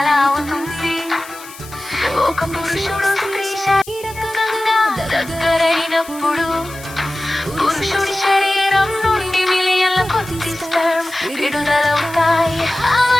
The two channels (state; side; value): noise; left; hiss, 18 dB below the sound